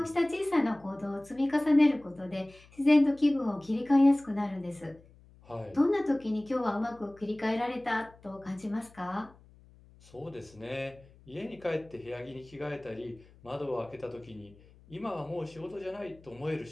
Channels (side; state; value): left; noise; hum, 25 dB below the sound